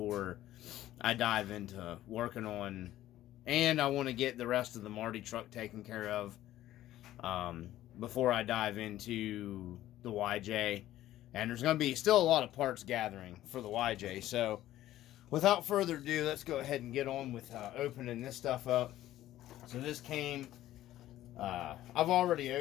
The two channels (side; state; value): right; quieter; 14.0 dB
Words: I dive into working on, and I want to get the rest of the Marty truck taken care of before I dive into the YJ. And there's going to be still a lot of parts gathering for the YJ, so without further ado, let's go ahead and get on with opening this stuff up. So this came, I've already